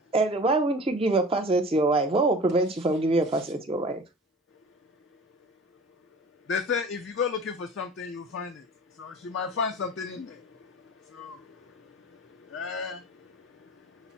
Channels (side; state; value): both; normal; correlation 0.41